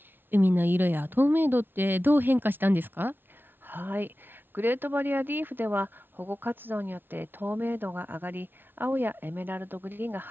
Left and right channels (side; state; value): left; late; 0.10 ms